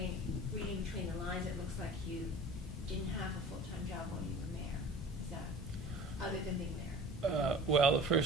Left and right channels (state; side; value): normal; both; correlation 0.41